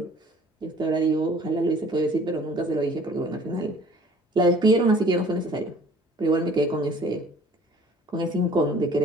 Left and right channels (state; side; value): normal; both; correlation 0.52